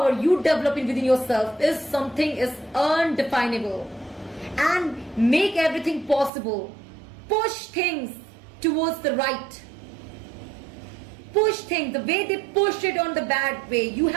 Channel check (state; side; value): drops out; left; at 6.3 s